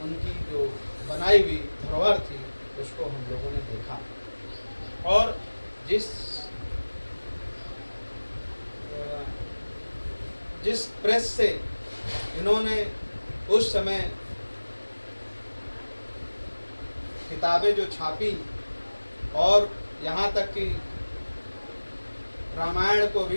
उनकी जो बनाई हुई धरोहर थी उसको हम लोगों ने देखा और जिस प्रेस से इन्होंने उस समय किताबें जो छापी और यहाँ तक कि रामायण को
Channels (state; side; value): inverted; both; correlation -1.00